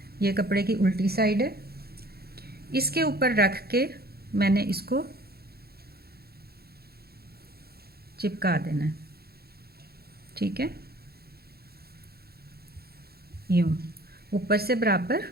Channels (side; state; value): left; late; 0.46 ms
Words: ये कपड़े की उल्टी साइड है, इसके ऊपर रख के मैंने इसको चिपका देना है, ठीक है। यूँ ऊपर से बराबर,